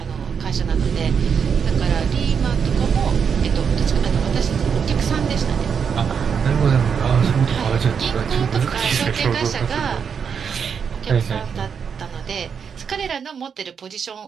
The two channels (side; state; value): left; quieter; 6.7 dB